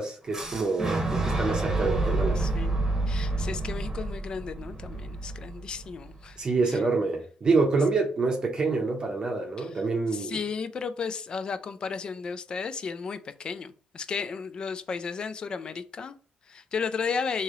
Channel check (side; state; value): both; normal; correlation 0.76